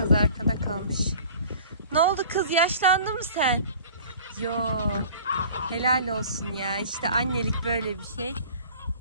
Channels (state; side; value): inverted; both; correlation -0.46